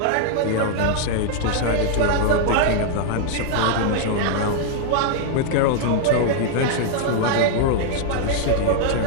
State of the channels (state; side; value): different; both; correlation 0.00